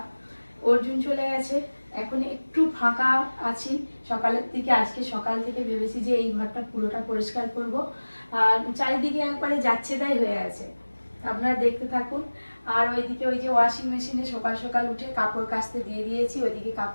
অর্জুন চলে গেছে, এখন একটু ফাঁকা আছি সকালের দিকে। আজকে সকাল থেকে ভেবেছি যে এই ঘরটা পুরোটা পরিষ্কার করব, আর চারিদিকে একবারে যাচ্ছে তাই হয়ে আছে। আপনারা দেখতে থাকুন। আর ওইদিকে ওই যে ওয়াশিং মেশিনে সকাল সকাল উঠে কাপড় কাচতে দিয়ে দিয়েছি, ওইদিকে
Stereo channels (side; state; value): both; inverted; correlation -1.00